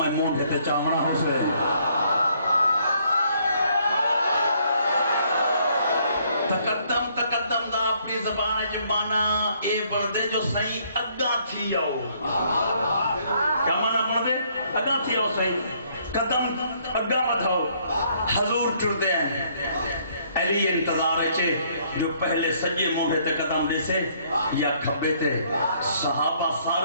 مونڈے تے چامنا ہو سے. تقدم تقدم دا اپنی زبان جو مانا اے بردے جو صحیح اگا تھی آؤ. کیا مانا بردے اگا تھی آؤ صحیح قدم اگا بڑھاؤ. حضور ٹردے ہیں علی انتظار ہے جو پہلے سجے موڑے تے قدم دے سے یا کھبے تے. صحابہ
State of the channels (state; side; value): inverted; both; correlation -0.66